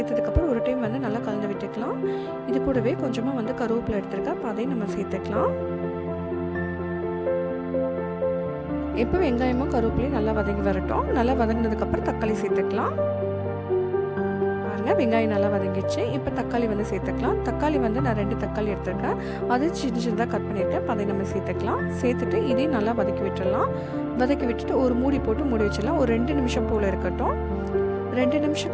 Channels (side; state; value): both; identical; correlation 1.00